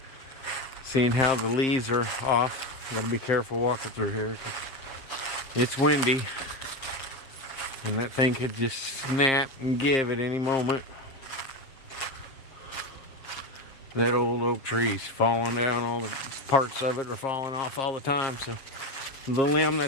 Seeing how the leaves are off. Gotta be careful walking through here. It's windy. And that thing could just snap and give at any moment. That old oak tree's falling down. All the parts of it are falling off all the time. So the limb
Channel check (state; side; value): late; right; 7.5 ms